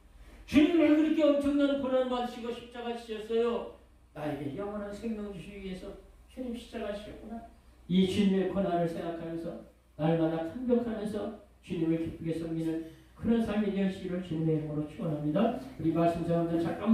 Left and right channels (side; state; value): both; identical; correlation 1.00